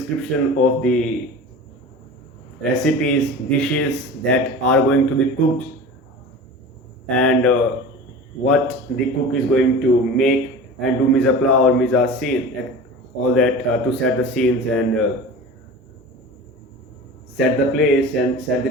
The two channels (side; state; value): both; normal; correlation 0.35